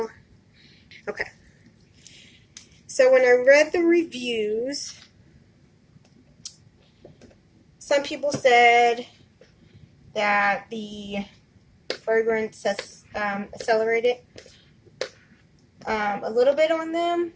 when I read the reviews, some people said that the fragrance has accelerated a little bit on them.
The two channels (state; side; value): identical; both; correlation 1.00